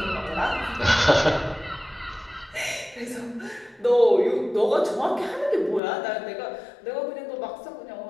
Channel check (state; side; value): drops out; right; at 5.8 s